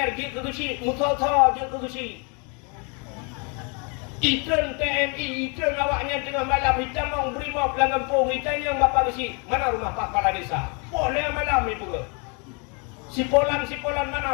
je ke gusi, musa-musa je ke gusi. Itren TNI, itren awaknya tengah malam hitam mau brimob lang kampung hitam yang bapa gusi. Mana rumah Pak Kepala Desa? Boleh malam itu ke? Sipolan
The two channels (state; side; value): quieter; right; 34.4 dB